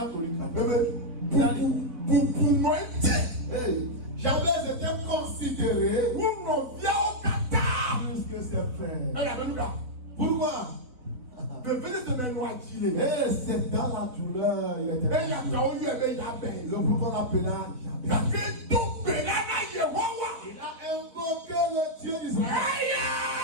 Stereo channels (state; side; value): late; left; 3.9 ms